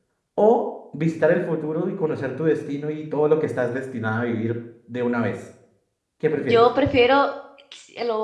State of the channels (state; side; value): identical; both; correlation 1.00